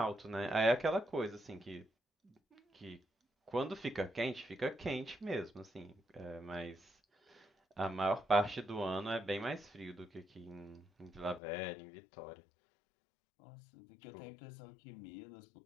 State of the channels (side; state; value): right; drops out; at 11.4 s